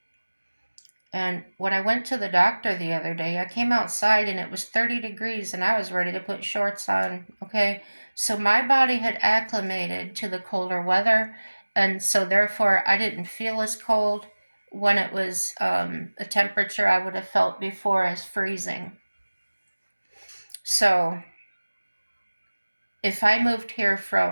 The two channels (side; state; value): both; inverted; correlation -1.00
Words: And when I went to the doctor the other day, I came outside and it was 30 degrees and I was ready to put shorts on, okay? So my body had acclimated to the colder weather, and so therefore I didn't feel as cold when it was a temperature I would have felt before as freezing. So if I moved here